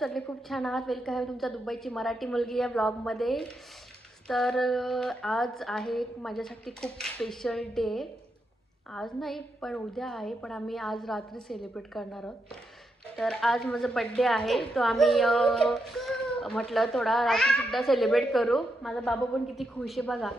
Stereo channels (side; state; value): both; normal; correlation 0.83